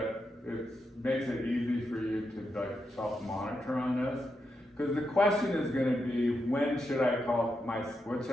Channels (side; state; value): both; normal; correlation 0.85